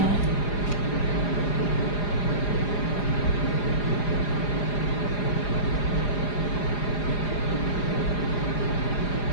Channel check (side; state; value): right; late; 4.9 ms